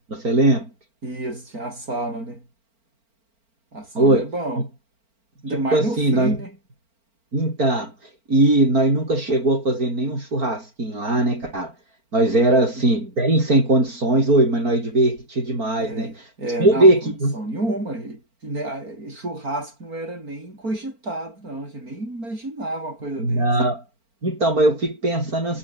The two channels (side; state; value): left; late; 4.4 ms